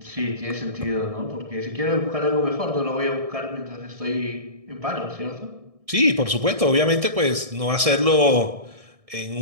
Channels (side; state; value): left; late; 1.6 ms